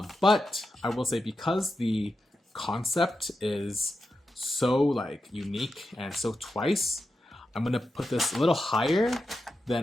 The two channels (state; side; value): normal; both; correlation 0.89